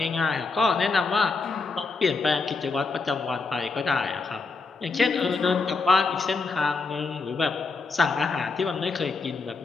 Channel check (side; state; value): right; quieter; 4.2 dB